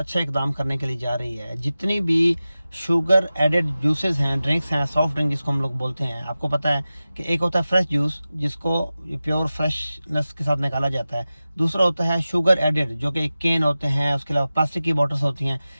इकदाम करने के लिए जा रही है। जितनी भी शुगर एडेड जूसेस हैं, ड्रिंक्स हैं, सॉफ्ट ड्रिंक जिसको हम लोग बोलते हैं, आपको पता है कि एक होता है फ्रेश जूस जिसको प्योर फ्रेशनेस के साथ निकाला जाता है। दूसरा होता है शुगर एडेड जो कि केन होते हैं, उसके अलावा प्लास्टिक की बॉटल्स होती हैं,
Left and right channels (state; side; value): inverted; both; correlation -0.95